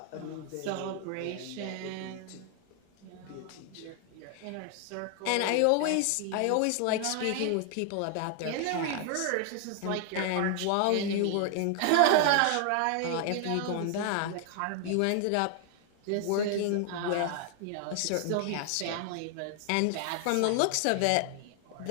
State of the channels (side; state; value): both; different; correlation 0.00